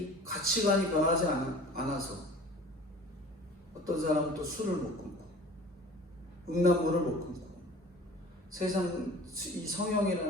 가치관이 변하지 않아서 어떤 사람은 또 술을 못 끊고 음란물을 못 끊고 세상 이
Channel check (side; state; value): both; normal; correlation 0.44